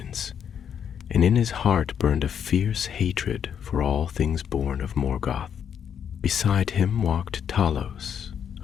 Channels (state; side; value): quieter; right; 8.2 dB